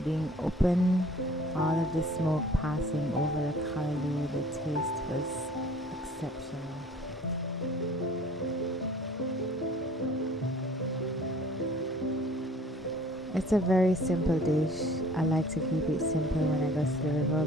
being open, all of the smoke passing over the callaloo. The taste was exceptional. It's a very simple dish. I like to keep it simple when I go to the river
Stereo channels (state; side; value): normal; both; correlation 0.51